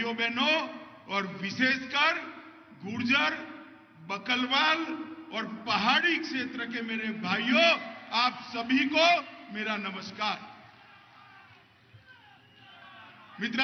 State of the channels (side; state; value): both; identical; correlation 1.00